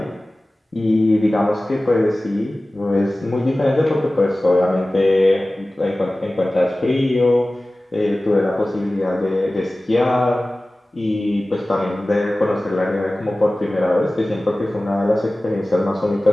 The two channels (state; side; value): normal; both; correlation 0.97